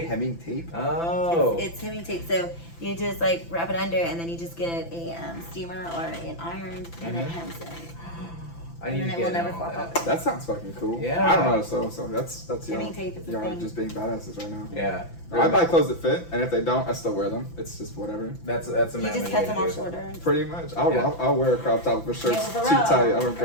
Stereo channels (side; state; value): right; late; 5.9 ms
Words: Hemming tape. Oh. It's hemming tape. So you just like wrap it under, and then you just get a steamer or an iron, and it Mhm. hems it. I need and to it will get never on flop that. off. That sounds fucking cool. Yeah. I don't know how to sew, so that's Hemming y'all. tape is a Y'all are thing. just being badasses right now. Yeah. I buy clothes that fit, and if they don't, I still wear them. It's just whatever. That's a You manly just way cut to them do off it. shorter. Pretty much. I'll Yeah. I'll wear a crop top if a shirt's Yeah, too for real. tight. I don't For